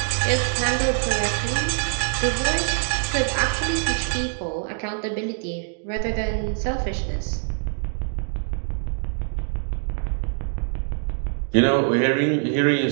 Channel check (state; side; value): silent; left; 63 dB below the other